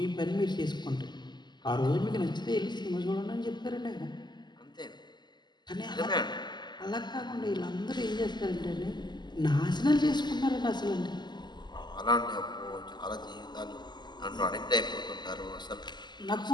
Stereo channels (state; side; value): late; right; 0.21 ms